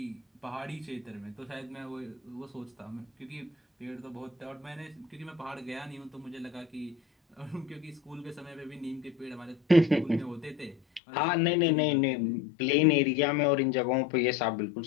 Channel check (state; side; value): drops out; right; at 11.0 s